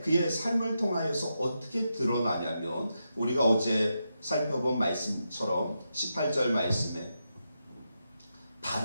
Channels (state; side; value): inverted; both; correlation -0.86